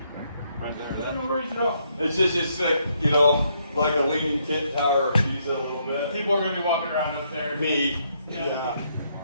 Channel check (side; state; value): both; inverted; correlation -0.74